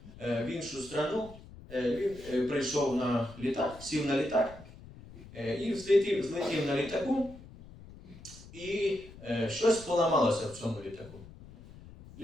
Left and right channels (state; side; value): noise; left; rumble, 18 dB below the sound